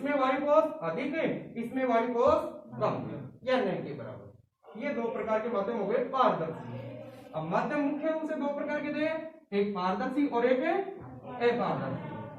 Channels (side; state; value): both; identical; correlation 1.00